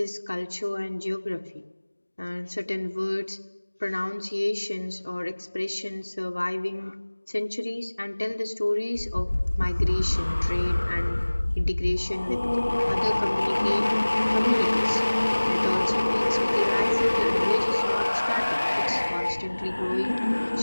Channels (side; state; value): both; inverted; correlation -1.00